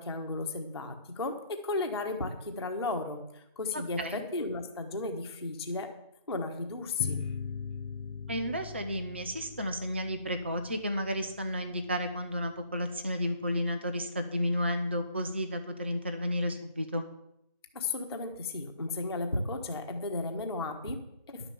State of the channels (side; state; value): both; inverted; correlation -0.58